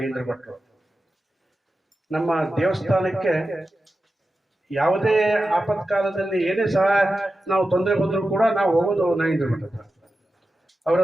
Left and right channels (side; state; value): both; normal; correlation 0.92